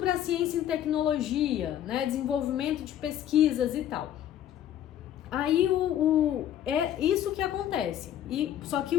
ciência e tecnologia, né, desenvolvimento de pesquisas e tal. Aí é isso que acontece. Só que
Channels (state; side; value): quieter; right; 11.0 dB